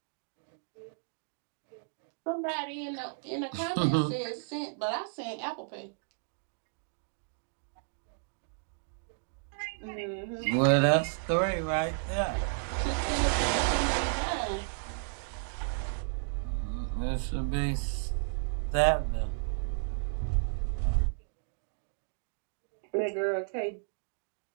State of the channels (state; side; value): silent; left; digital silence